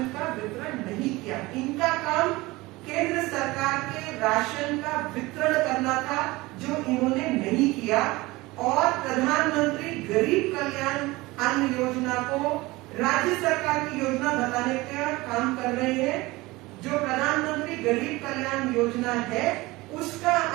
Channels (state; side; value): quieter; left; 21.1 dB